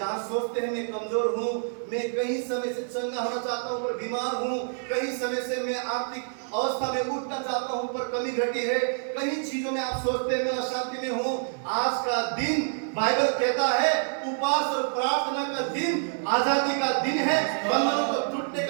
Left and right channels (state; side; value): silent; left; digital silence